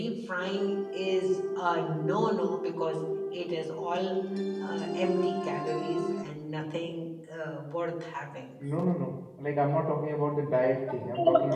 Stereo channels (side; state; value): both; identical; correlation 1.00